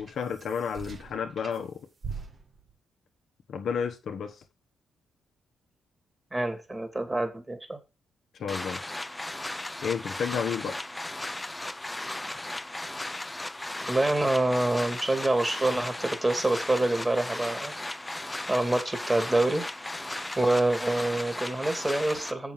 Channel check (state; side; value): normal; both; correlation 0.93